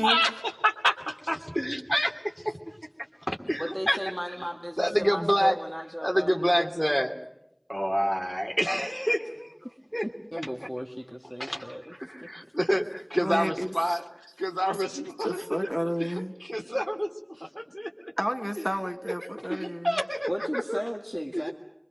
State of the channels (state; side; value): identical; both; correlation 1.00